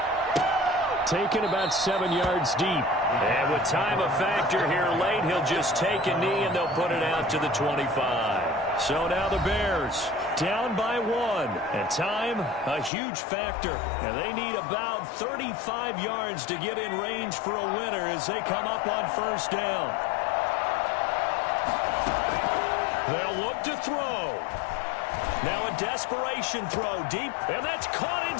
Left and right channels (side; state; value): right; drops out; at 12.9 s